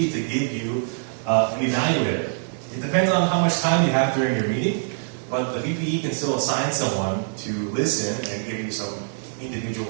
to give you an evaluator. It depends on how much time you have during your meeting, but the VPE can still assign someone to listen and give you some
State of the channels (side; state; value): left; silent; digital silence